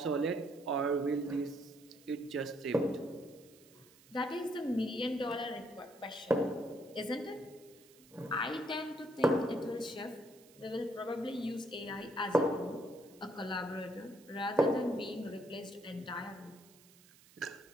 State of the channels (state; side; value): noise; right; hiss, 25 dB below the sound